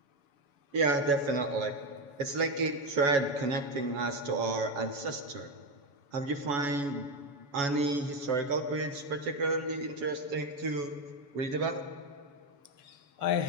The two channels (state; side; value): late; left; 7.1 ms